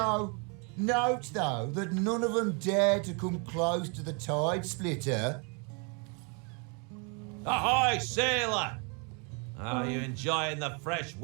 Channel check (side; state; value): left; quieter; 34.8 dB